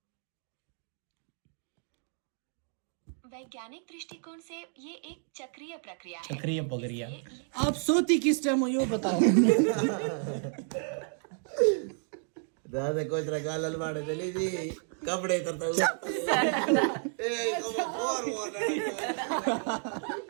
वैज्ञानिक दृष्टिकोण से ये एक चक्रीय प्रक्रिया है। चक्रीय प्रक्रिया। आप सोती किस टाइम हो ये बताओ। दादा कोई तरह गाल अलवाड़े चली जी, कपड़े तरता हूँ।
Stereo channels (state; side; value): silent; left; 57 dB below the other